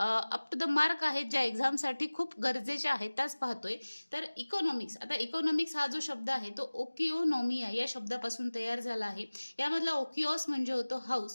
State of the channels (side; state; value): both; inverted; correlation -1.00